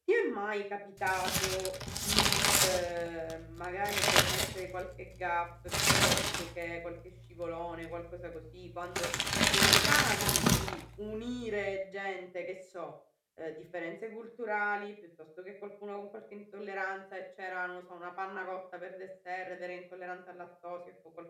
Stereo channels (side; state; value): both; identical; correlation 1.00